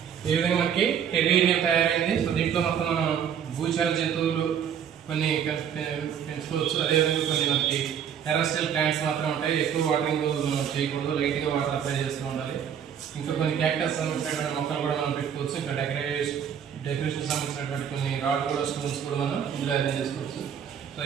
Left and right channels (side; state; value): left; quieter; 8.4 dB